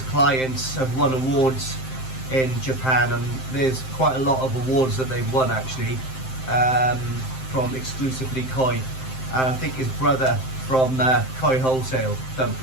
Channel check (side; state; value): right; late; 7.7 ms